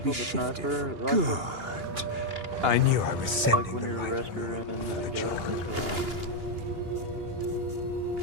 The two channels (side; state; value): left; late; 2.8 ms